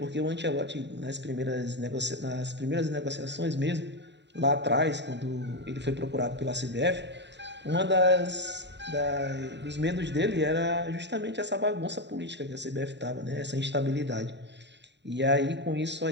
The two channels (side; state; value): left; late; 0.52 ms